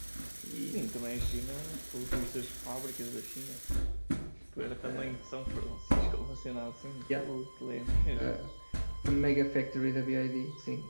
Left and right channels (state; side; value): inverted; both; correlation -1.00